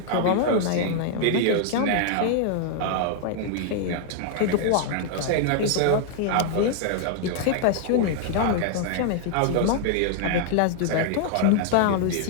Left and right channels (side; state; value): both; different; correlation -0.01